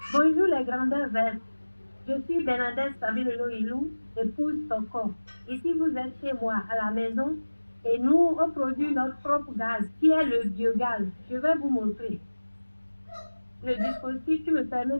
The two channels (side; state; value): both; inverted; correlation -1.00